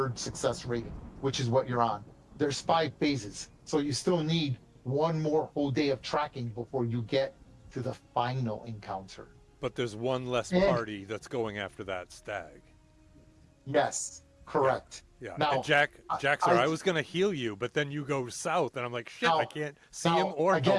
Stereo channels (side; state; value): both; identical; correlation 1.00